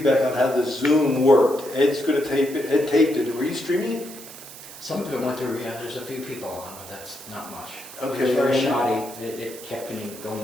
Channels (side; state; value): right; noise; hiss, 15 dB below the sound